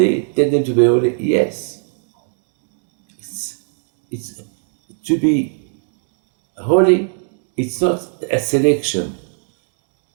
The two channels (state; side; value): silent; left; 56 dB below the other